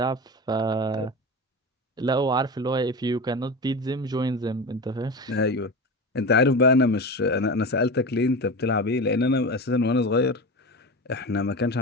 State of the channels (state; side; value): normal; both; correlation 0.26